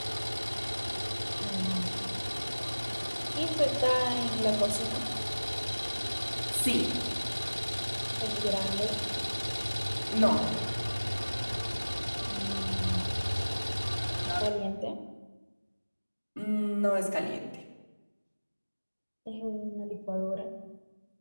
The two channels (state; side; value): inverted; both; correlation -1.00